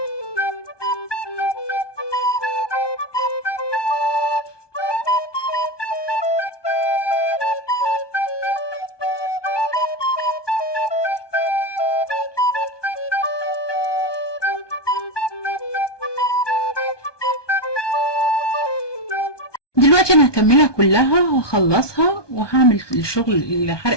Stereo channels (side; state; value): right; late; 1.2 ms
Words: دلوقتي انا هكملها كلها وهخلصها وهعمل الشغل